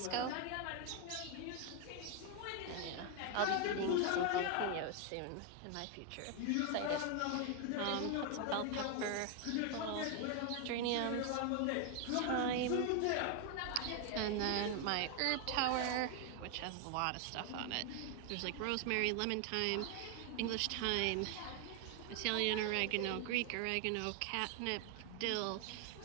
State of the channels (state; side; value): different; both; correlation 0.01